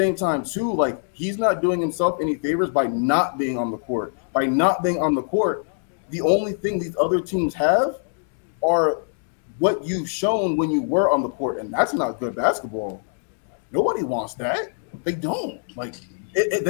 time, too, like he's not doing himself any favors by not being on the court. By not being on the court, the only thing these other teams have are what you've shown when you were on the court, and that's not good basketball. Nobody wants that. They don't. Like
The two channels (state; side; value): silent; right; digital silence